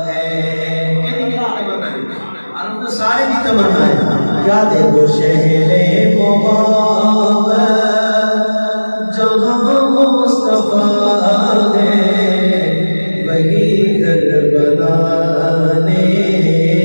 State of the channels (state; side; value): inverted; both; correlation -1.00